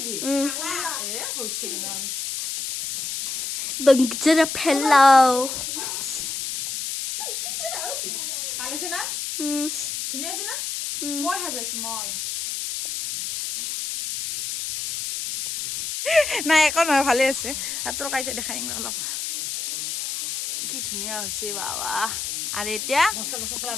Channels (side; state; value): left; noise; hiss, 4 dB below the sound